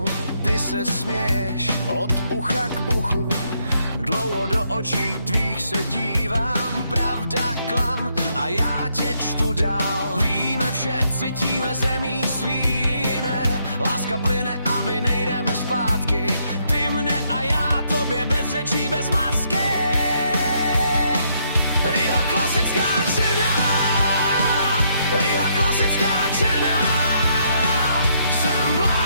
ty se směješ od ucha k uchu. Dlouho do očí tvých se dívám, pravda, klam a já tě čtu dál. Víme vše, cítíme zemí svý jiné, láska plyne a my nejdeme zpátky. Ty mne a já tobě bez řečí, bez masky. Riha klasická černá, Riha klasická černá. Jsem v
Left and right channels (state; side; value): inverted; both; correlation -0.73